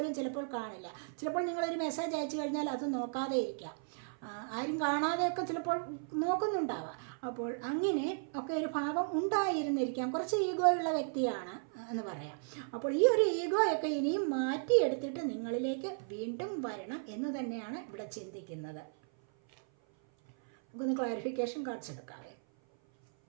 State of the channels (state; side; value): silent; left; 54 dB below the other